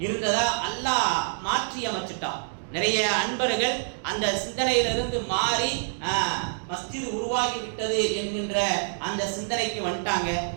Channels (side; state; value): left; silent; digital silence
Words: இருந்ததா அல்லாஹ் மாற்றி அமைச்சிட்டான். நிறைய அன்பர்கள் அந்த சிந்தனையிலிருந்து மாறி மஸ்ஜித் உருவாகி விட்டது என்கின்ற அந்த சிந்தனைக்கு வந்துட்டாங்க.